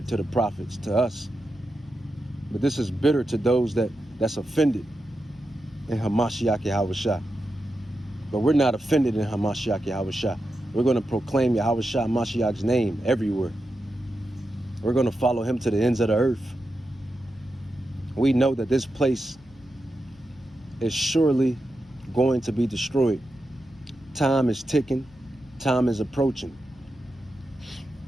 to the prophets, to us. But this is bitter to those that's offended in Hamashiach Yahweh Shai. But we're not offended in Hamashiach Yahweh Shai. We're going to proclaim Yahweh Shai Mashiach's name everywhere. We're going to follow him to the ends of the earth. We know that this place is surely going to be destroyed. Time is ticking. Time is approaching.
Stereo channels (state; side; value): noise; left; hum, 26 dB below the sound